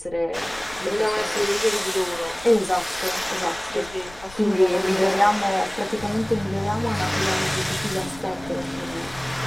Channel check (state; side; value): noise; left; rumble, 20 dB below the sound